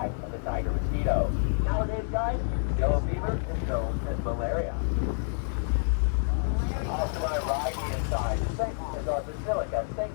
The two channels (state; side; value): silent; right; 58 dB below the other